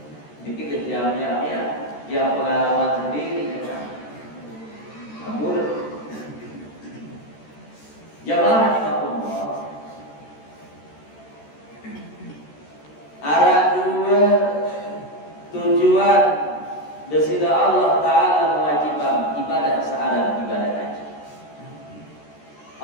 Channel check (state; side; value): late; right; 13 ms